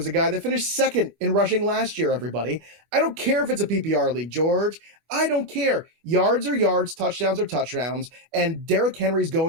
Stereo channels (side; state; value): left; late; 24 ms